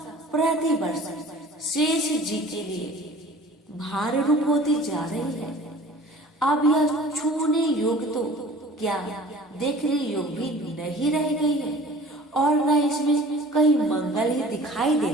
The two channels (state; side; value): normal; both; correlation 0.45